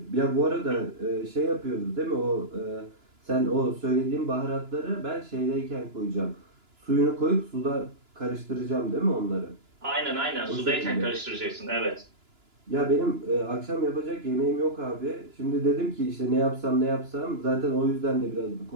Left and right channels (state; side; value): late; left; 2.9 ms